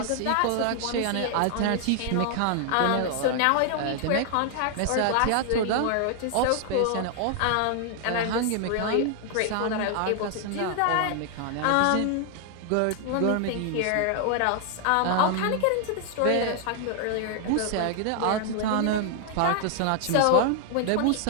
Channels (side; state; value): both; different; correlation 0.00